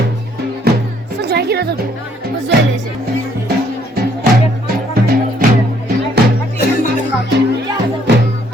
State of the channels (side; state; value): both; normal; correlation 0.66